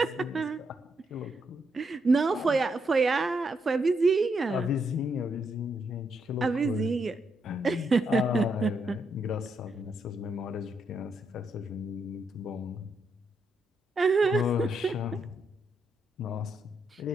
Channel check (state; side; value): normal; both; correlation 0.79